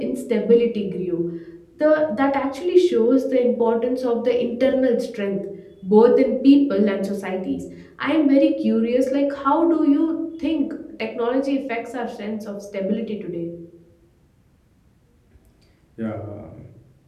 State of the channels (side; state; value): both; identical; correlation 1.00